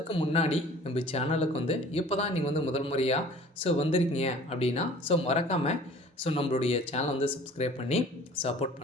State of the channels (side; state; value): both; normal; correlation 0.48